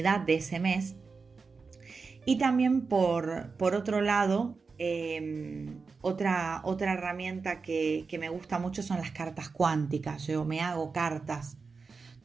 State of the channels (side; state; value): left; quieter; 4.7 dB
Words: de ese mes. Y también por otro lado, otra herramienta que me gusta mucho son las cartas cuánticas. Yo me hago cartas